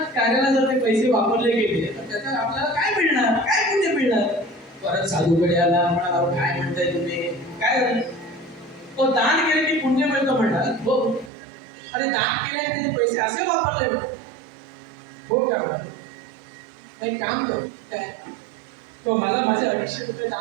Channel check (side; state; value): left; drops out; at 11.3 s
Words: कार्याला जर ते पैसे वापरले गेले तर त्याचा आपल्याला काय मिळणार, काय पुण्य मिळणार. परत साधूकडे आला, म्हणाला काय म्हणताय तुम्ही, काय झालं. तो दान केले की पुण्य मिळतं म्हणणार. हो, अरे दान केले त्यांनी पैसे असे वापरले हो का. नाही काम कर काय, तो मला माझे 250 रुपये